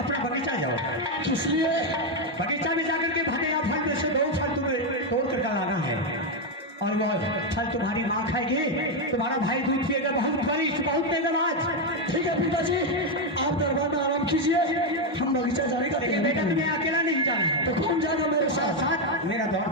बगीचा जाओ। किस लिए? बगीचा में जाकर के भगेगा फल में से 2 फल तुम्हें तोड़ कर डालाना है और वो फल तुम्हारी माँ खाएगी, तुम्हारा भाई दूध पिएगा, बहुत बरिष्ठ बहुत तेजबाज। ठीक है पिताजी, आप दरबार में आराम कीजिए, हम बगीचा जाने का। बेटा तुम्हें अकेला नहीं जाना है। तो कौन जाएगा मेरे साथ? साथ मेरा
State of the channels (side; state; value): both; normal; correlation 0.04